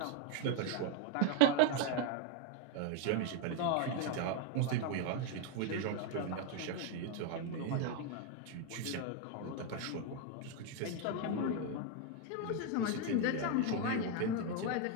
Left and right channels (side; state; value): both; different; correlation 0.01